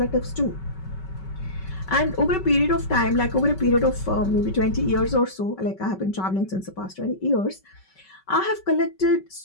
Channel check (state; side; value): late; right; 5.3 ms